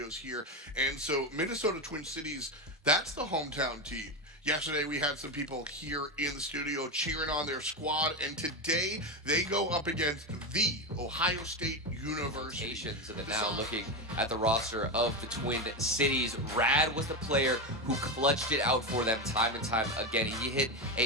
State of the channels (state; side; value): normal; both; correlation 0.14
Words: here. And so, Minnesota Twin Cities, that's the hometown team. Yesterday, we had some people here in the studio cheering on their squad, and today they go up against the Ohio State University. Of it now, looking at the roster of the Twin Cities, Rad was the player who clutched it out for them time and time again. He hit